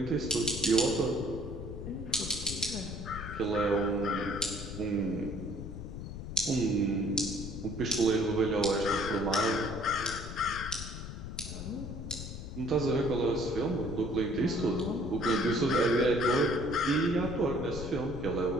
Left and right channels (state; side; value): noise; left; rumble, 8 dB below the sound